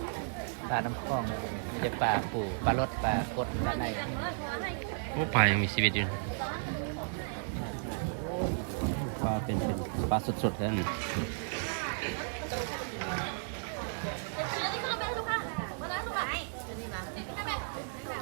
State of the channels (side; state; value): left; silent; 55 dB below the other